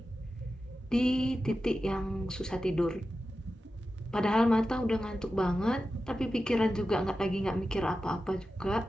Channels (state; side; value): normal; both; correlation 0.92